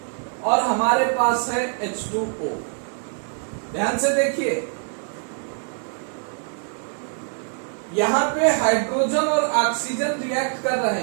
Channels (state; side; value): silent; left; 56 dB below the other